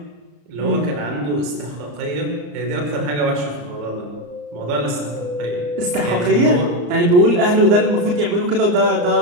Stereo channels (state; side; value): late; left; 34 ms